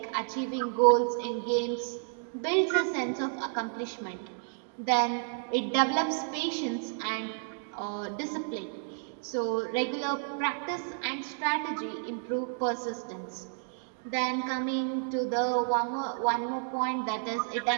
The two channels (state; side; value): silent; left; digital silence